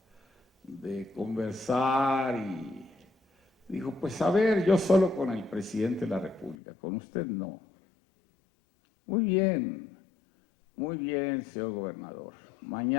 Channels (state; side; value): drops out; right; at 6.6 s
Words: de conversar? Y dijo, pues a ver, yo solo con el presidente de la República, con usted no. Muy bien, señor gobernador.